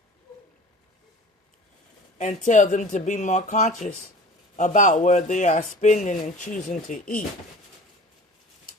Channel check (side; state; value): both; normal; correlation 0.41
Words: and tell them to be more conscious about where they are spending and choosing to eat.